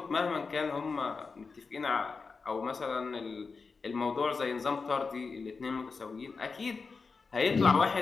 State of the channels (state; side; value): quieter; right; 4.6 dB